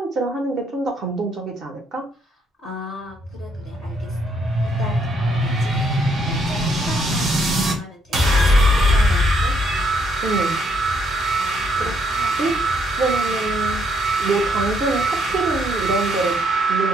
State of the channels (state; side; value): normal; both; correlation 0.71